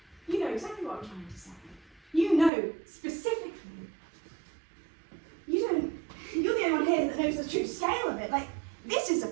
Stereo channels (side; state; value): left; drops out; at 2.5 s